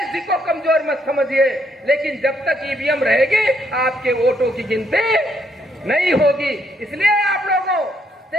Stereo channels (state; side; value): normal; both; correlation 0.73